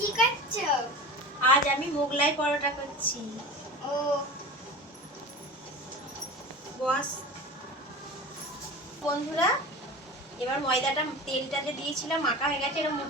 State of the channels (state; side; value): normal; both; correlation 0.32